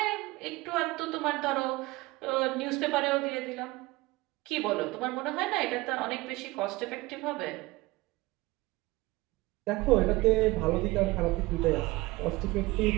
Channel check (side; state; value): left; quieter; 20.8 dB